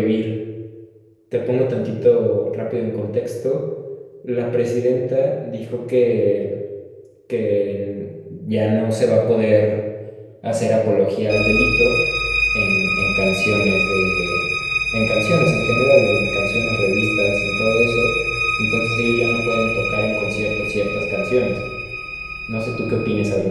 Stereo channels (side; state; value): both; identical; correlation 1.00